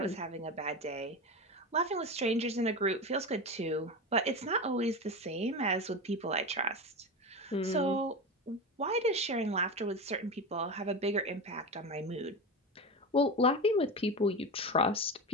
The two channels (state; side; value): normal; both; correlation 0.22